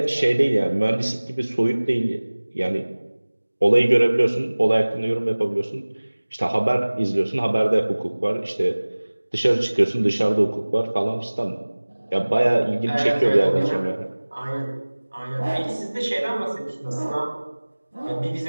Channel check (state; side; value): inverted; both; correlation -1.00